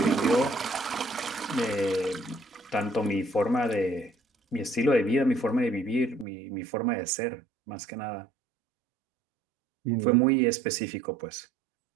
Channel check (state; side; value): drops out; left; at 6.2 s